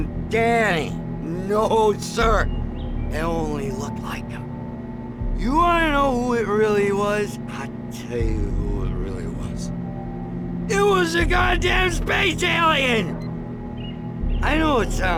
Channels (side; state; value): both; identical; correlation 1.00